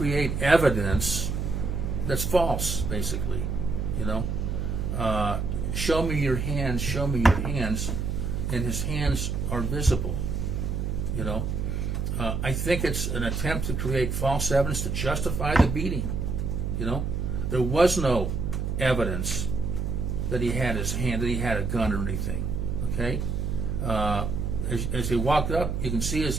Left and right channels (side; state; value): right; noise; hum, 1 dB below the sound